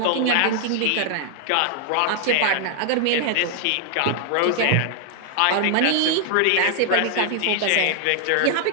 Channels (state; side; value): different; both; correlation 0.00